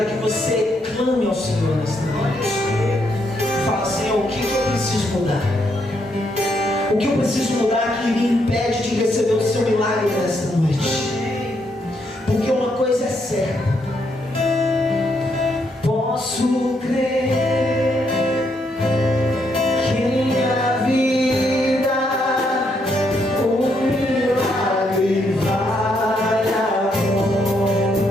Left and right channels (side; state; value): both; normal; correlation 0.76